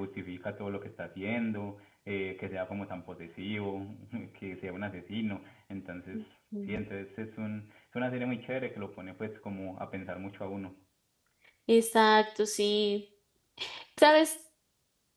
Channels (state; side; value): identical; both; correlation 1.00